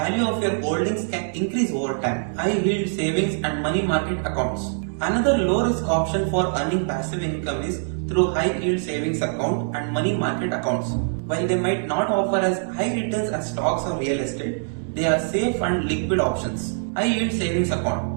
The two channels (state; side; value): silent; left; digital silence